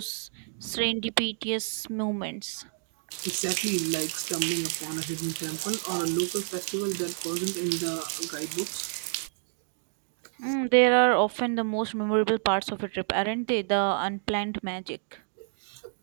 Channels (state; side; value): silent; left; digital silence